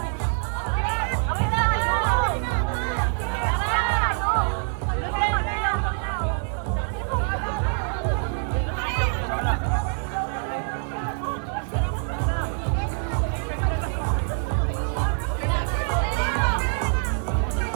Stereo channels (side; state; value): left; silent; 62 dB below the other